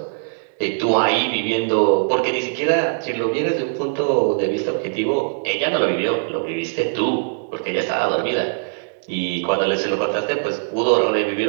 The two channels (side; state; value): left; silent; digital silence